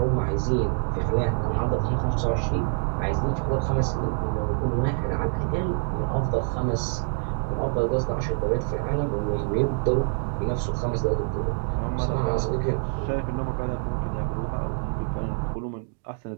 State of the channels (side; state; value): left; silent; digital silence